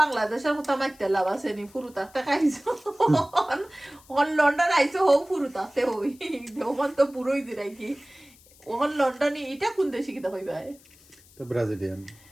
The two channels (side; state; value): left; noise; hiss, 26 dB below the sound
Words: বাংলাদেশের কথা মাইতে লাভ আছে নি ফুরু তাতে খাইছো লন্ডন আইসো হোক ফুরু তাতে হই ওখান তো পুরোই দিলাই কি ওখান লন্ডনে এটা কোন দেশে কিতা কইবা তো ব্রাজিলিয়ান